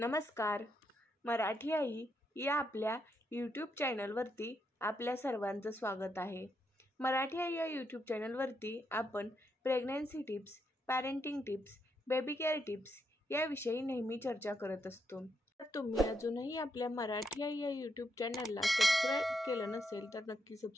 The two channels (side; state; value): both; normal; correlation 0.79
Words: मराठी आई या आपल्या यूट्यूब चॅनलवरती आपल्या सर्वांचं स्वागत आहे. मराठी आई या यूट्यूब चॅनलवरती आपण pregnancy tips, parenting tips, baby care tips याविषयी नेहमी चर्चा करत असतो. तर तुम्ही अजूनही आपल्या मराठी आई या यूट्यूब चॅनलला सबस्क्राईब केलं नसेल तर नक्की